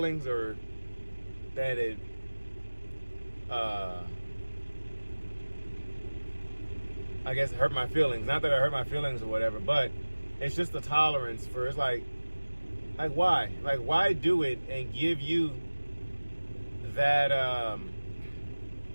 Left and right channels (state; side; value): inverted; both; correlation -1.00